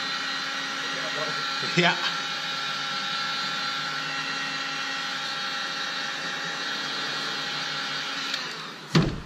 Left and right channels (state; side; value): identical; both; correlation 1.00